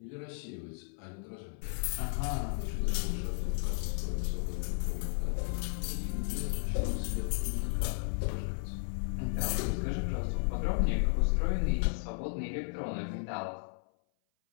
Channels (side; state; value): right; silent; 55 dB below the other